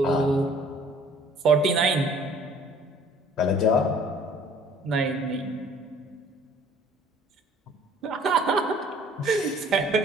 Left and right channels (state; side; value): normal; both; correlation 0.54